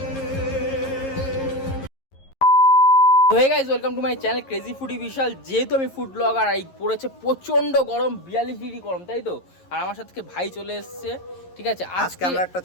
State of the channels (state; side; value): late; right; 11 ms